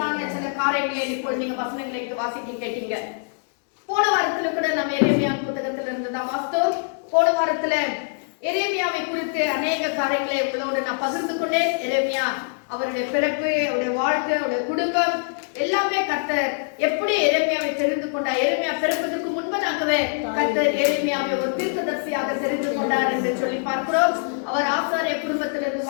சில காரியங்களை இப்போ நீங்க வசனங்களை வாசிக்க கேட்டீங்க. போன வாரத்துல கூட நம்ம எரேமியா புத்தகத்துல இருந்து தான் வாசித்தோம். போன வாரத்துல எரேமியாவை குறித்து அநேக காரியங்களை உங்களோட நான் பகிர்ந்து கொண்டேன். எரேமியா அவருடைய பிறப்பு, அவருடைய வாழ்க்கை, அவருடைய குடும்பம் எல்லாமே கர்த்தர் எப்படி எரேமியாவை தெரிந்து கொண்டார். எரேமியா பிறப்பதற்கு முன்பதாகவே கர்த்தர் எரேமியாவை ஒரு தீர்க்கதரிசியாக தெரிந்து கொண்டார் என்று சொல்லி பார்க்கிறோம். அவர் ஆசாரிய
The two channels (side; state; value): right; silent; 63 dB below the other